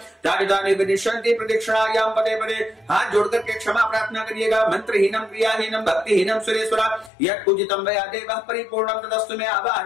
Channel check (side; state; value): right; drops out; at 7.1 s